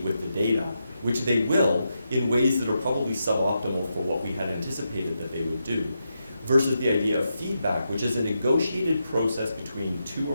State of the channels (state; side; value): inverted; both; correlation -0.85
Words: with the data, which they will in ways that are probably suboptimal for what we had anticipated that they would do, versus the idea of feedback, which is a negotiated process between two